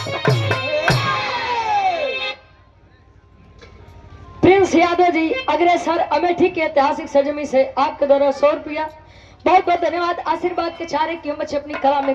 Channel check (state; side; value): identical; both; correlation 1.00